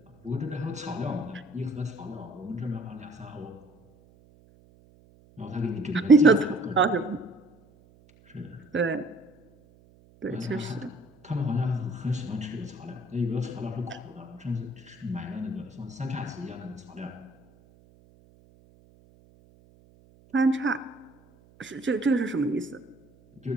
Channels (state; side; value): noise; right; hum, 28 dB below the sound